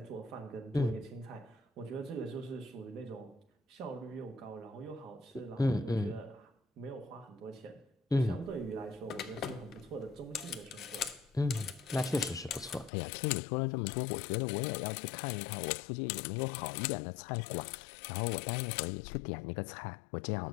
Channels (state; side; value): drops out; right; at 12.9 s